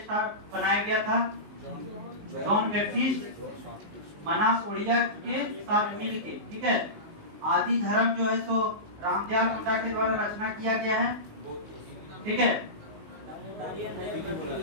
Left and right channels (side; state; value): left; late; 19 ms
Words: बनाया गया था जॉन बैप्टिस्ट मनास उड़िया के साथ मिलके, ठीक है। आदि धर्म जो है सो रामदयाल मुंडा के द्वारा रचना किया गया है, ठीक है।